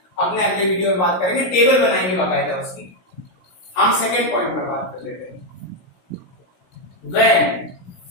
अपने अगले वीडियो में बात करेंगे, टेबल बनाएंगे बाकायदा उसकी। हम सेकेंड पॉइंट पर बात कर लेते हैं। When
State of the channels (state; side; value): late; right; 16 ms